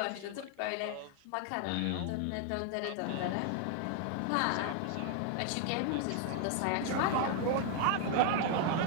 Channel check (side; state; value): both; different; correlation 0.01